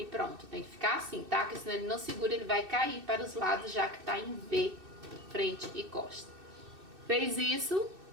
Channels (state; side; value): late; left; 2.6 ms